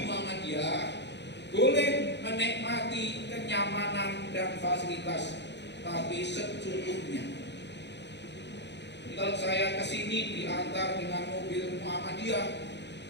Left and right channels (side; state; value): right; late; 0.51 ms